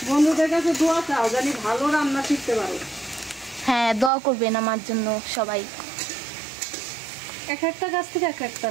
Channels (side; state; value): left; drops out; at 4.1 s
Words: বন্ধুদের কাছে দোয়া চাও জানি ভালো রান্না শিখতে পারো। হ্যাঁ, দোয়া করবেন আমার জন্য সবাই। এক একটা গাছ থেকে এক একটা